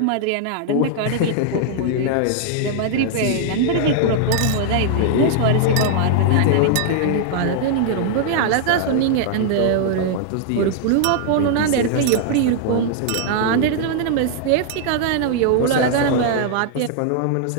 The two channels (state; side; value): different; both; correlation -0.01